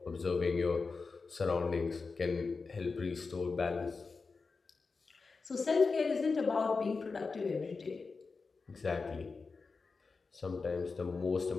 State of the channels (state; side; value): quieter; right; 4.4 dB